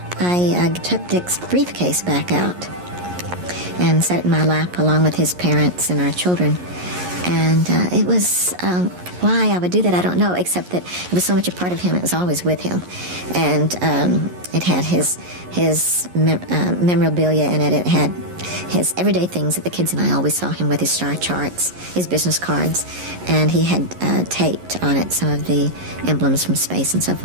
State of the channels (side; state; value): left; late; 11 ms